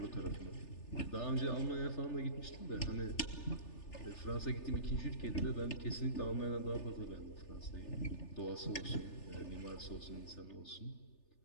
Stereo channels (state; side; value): late; right; 3.4 ms